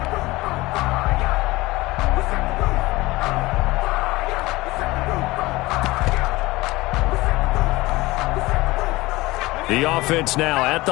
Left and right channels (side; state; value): right; quieter; 20.2 dB